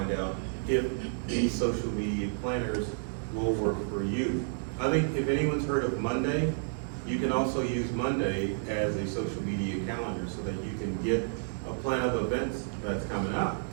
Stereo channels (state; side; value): silent; left; 57 dB below the other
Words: out if these social media planners will work for you. I think if anyone's heard of Monday, you can also use Monday as a social media calendar so that you can get a plan of events that's coming up.